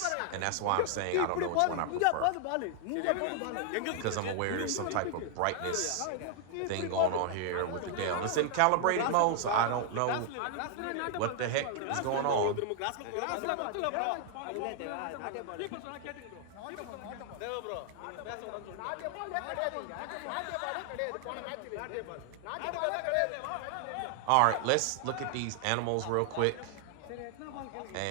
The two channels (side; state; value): both; different; correlation 0.00